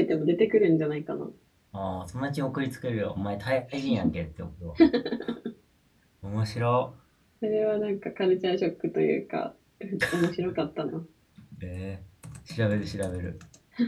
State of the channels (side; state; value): both; identical; correlation 1.00